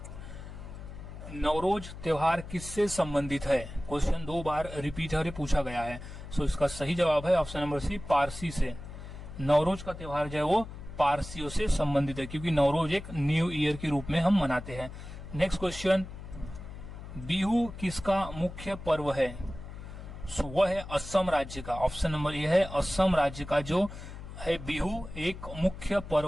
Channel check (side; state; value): left; noise; hum, 12 dB below the sound